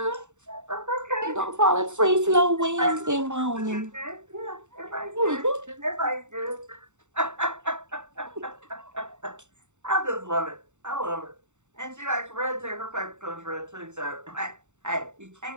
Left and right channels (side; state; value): left; late; 0.84 ms